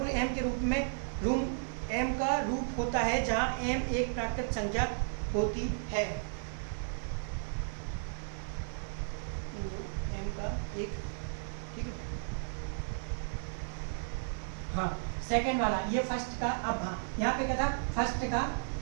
m के रूप में m का रूप होता है जहां m एक प्राकृतिक संख्या होती है। m का एक, ठीक है, हाँ सेकंड वाला ये फर्स्ट का, अब हाँ यहाँ पे क्या था, फर्स्ट का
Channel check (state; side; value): silent; left; 55 dB below the other